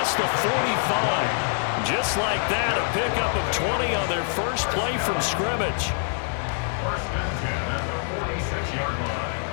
the 45. Just like that, a pickup of 20 on their first play from scrimmage. First and 10 at the 46-yard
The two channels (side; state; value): right; silent; 62 dB below the other